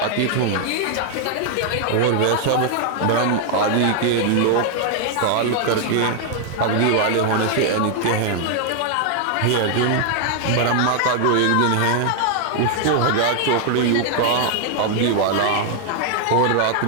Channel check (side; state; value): both; different; correlation 0.00